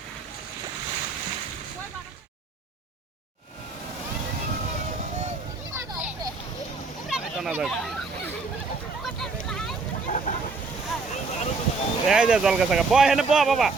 এই যে জল গাছা বয় হেনে বয় বাবা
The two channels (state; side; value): quieter; left; 4.1 dB